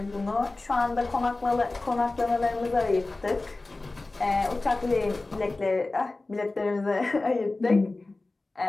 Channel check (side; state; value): right; quieter; 3.2 dB